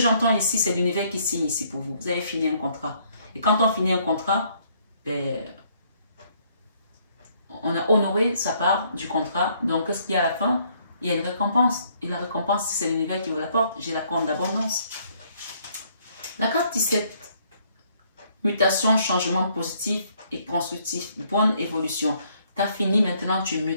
ici, c'est l'univers qui signe ici pour vous. Vous avez fini un contrat. Et quand on finit un contrat, on a honoré sa part du contrat. Donc, qu'est-ce qu'il y a à la fin? Il y a une récompense. Et la récompense, c'est l'univers qui vous l'apporte. J'ai la corne d'abondance. La carte 17. Mutation, changement positif et constructif. Bonne évolution. Tu as fini, maintenant tu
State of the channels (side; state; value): both; inverted; correlation -0.67